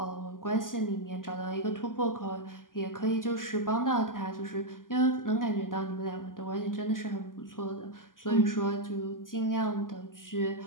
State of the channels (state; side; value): late; right; 0.90 ms